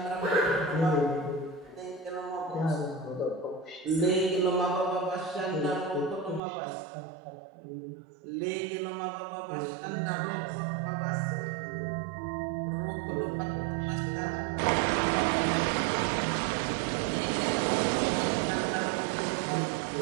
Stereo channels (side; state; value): left; drops out; at 6.4 s